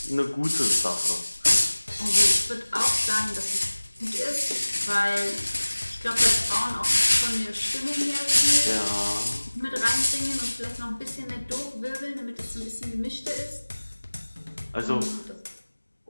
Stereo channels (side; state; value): both; inverted; correlation -1.00